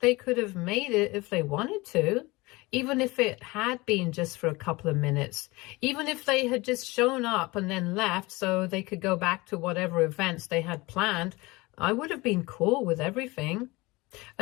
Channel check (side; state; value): right; quieter; 22.8 dB